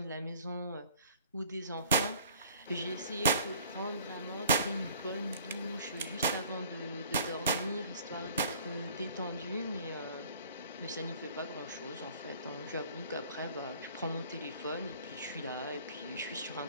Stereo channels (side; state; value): both; inverted; correlation -0.52